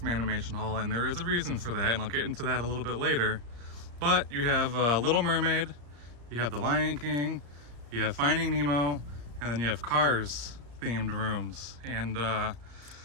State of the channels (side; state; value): left; late; 34 ms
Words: Animation Hall, and there is a reason for that, and I'll get into that a little bit later. But you have Little Mermaid, you have The Lion King, you have Finding Nemo, and then you have Cars themed rooms. And